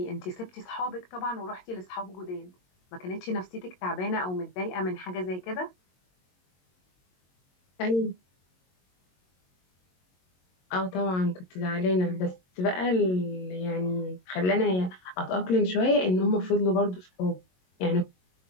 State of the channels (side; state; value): right; late; 22 ms